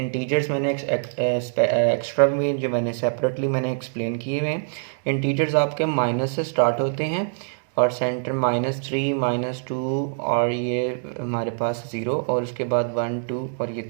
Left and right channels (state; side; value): silent; left; digital silence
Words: मैंने एक्स्ट्रा में जो मैंने सेपरेटली मैंने एक्सप्लेन किए हुए हैं। इंटीजर्स आपके माइनस से स्टार्ट होते हैं और सेंटर -3, -2 और ये हमारे पास 0 और उसके बाद 1, 2 और ये